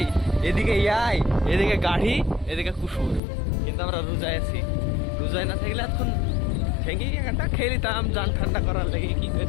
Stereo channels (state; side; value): drops out; right; at 3.2 s